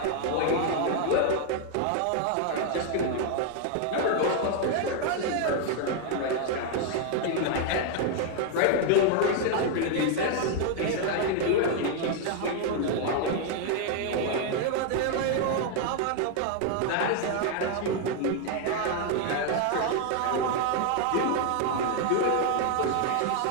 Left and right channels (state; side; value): different; both; correlation 0.00